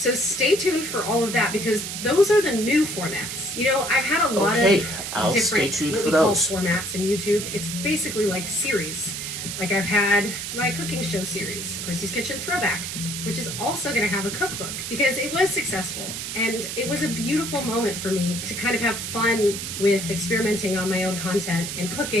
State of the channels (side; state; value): right; noise; hiss, 5 dB below the sound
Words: stay tuned for all of that because those are the new formats. You know, I've had a lot of different formats in YouTube. It's basically like series. Like I've had my cooking show series, Christy's Kitchen Throwback, which is also going to have a cookbook because it was successful. And it was a beautiful moment for me to kind of have fun with experimenting on my own content and